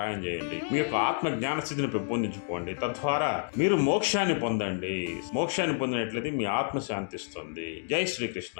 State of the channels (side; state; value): right; silent; 58 dB below the other